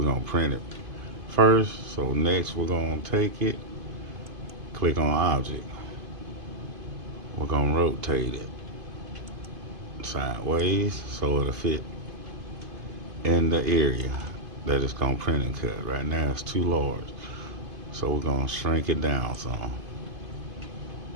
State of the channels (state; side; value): late; left; 2.5 ms